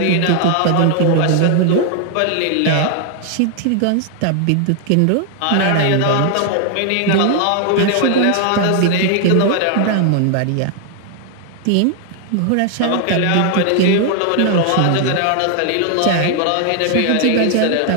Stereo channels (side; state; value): both; different; correlation 0.00